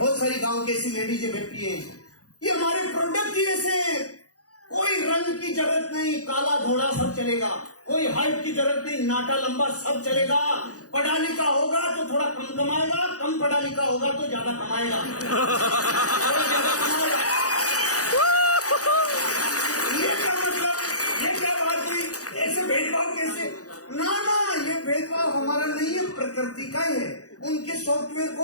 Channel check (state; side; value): late; right; 0.67 ms